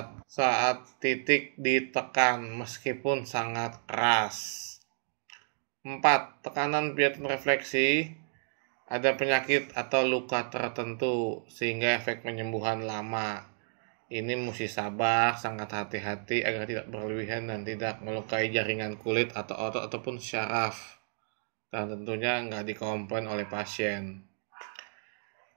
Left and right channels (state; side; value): silent; left; digital silence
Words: titik ditekan meskipun sangat keras. 4. Tekanan pijat refleksi. Ada penyakit atau luka tertentu sehingga efek penyembuhan lama. Ini mesti sabar, sangat hati-hati agar tidak berlebihan dan tidak melukai jaringan kulit atau otot ataupun syaraf. Dan tentunya nggak dikomplain oleh pasien.